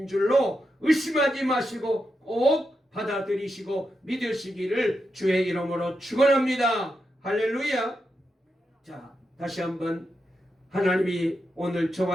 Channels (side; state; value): both; normal; correlation 0.86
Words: 줄로 의심하지 마시고 꼭 받아들이시고 믿으시기를 주의 이름으로 축원합니다. 할렐루야. 자, 다시 한번 하나님이 오늘